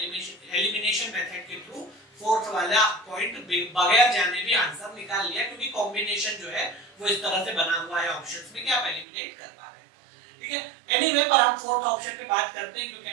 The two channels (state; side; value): drops out; left; at 9.1 s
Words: मेथड के थ्रू फोर्थ वाला पॉइंट बगैर जाने भी आंसर निकाल लिया, क्योंकि कॉम्बिनेशन जो है वो इस तरह से बना हुआ है ऑप्शंस में कि आप एलिमिनेट कर पा रहे हैं, ठीक है। एनीवे, पर हम फोर्थ ऑप्शन पे बात करते हैं, क्योंकि